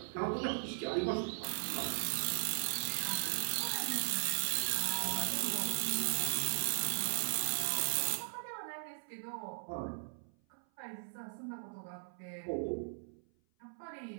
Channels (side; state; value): left; silent; 52 dB below the other